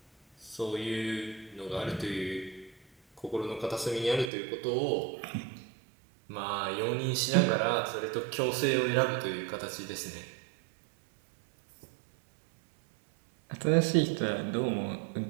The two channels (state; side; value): drops out; left; at 4.3 s